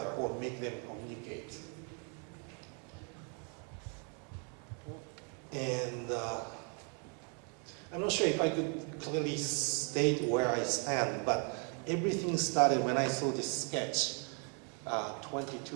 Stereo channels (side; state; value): left; quieter; 38.5 dB